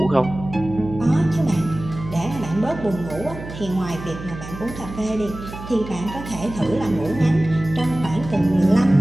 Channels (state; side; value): noise; right; hum, 12 dB below the sound